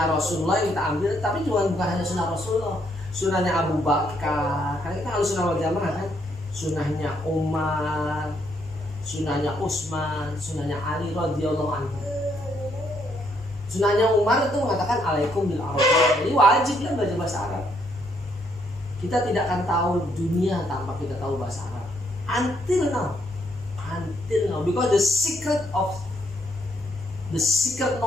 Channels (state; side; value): normal; both; correlation 0.73